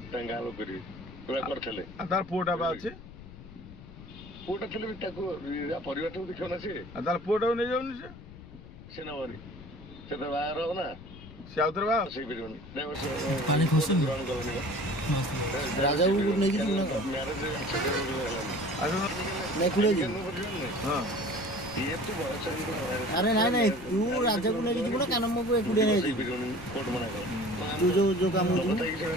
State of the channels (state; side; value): noise; left; rumble, 16 dB below the sound